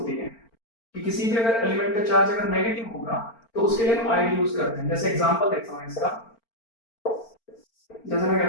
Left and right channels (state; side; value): late; right; 4.4 ms